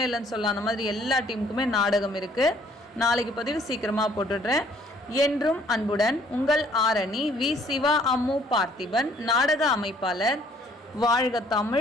இல்லைன்னு சொல்லலாம். அந்த மாதிரி எல்லா டீமுக்குமே நாடகம் இருக்குது. நாளைக்கு பதிவு சீக்கிரமாக போட்டுடுறேன். என்றும் அன்புடன் உங்கள் ஆரணி வி. சிவா அம்மு பார்த்திபன் நாடக அமைப்பாளர். வாழ்க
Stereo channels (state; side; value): normal; both; correlation 0.61